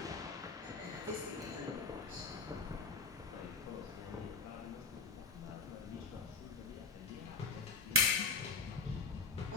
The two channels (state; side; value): quieter; right; 4.2 dB